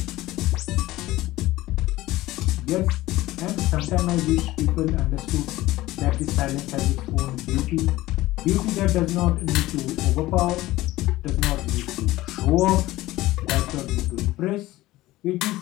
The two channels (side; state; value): right; quieter; 17.4 dB